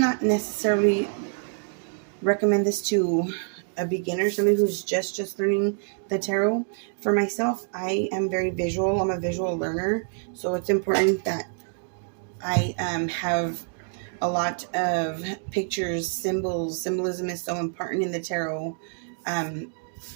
necessarily recommend this to a beginner, somebody who's just learning the tarot. For myself, I am very visual. I'm a visual learner, so it's important that I have a lot of pictures, symbols. Symbolism is so important in the tarot.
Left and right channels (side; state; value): left; silent; 57 dB below the other